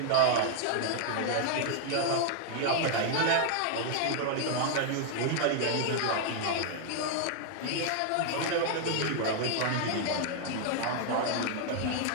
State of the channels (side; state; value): both; different; correlation 0.00